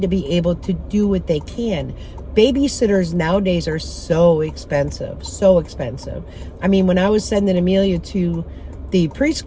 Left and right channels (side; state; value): both; identical; correlation 1.00